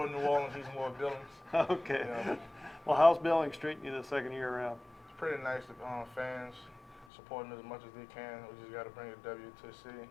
New Orleans, he's more Billings. Okay. Yeah. Well, how's Billings treating you the second year around? It's pretty nice. The fans supporting as much as they can. We just got to bring a W to the city,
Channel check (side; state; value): right; drops out; at 7.1 s